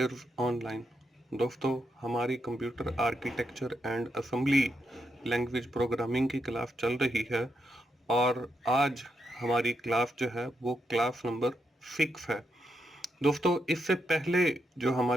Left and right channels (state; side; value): normal; both; correlation 0.82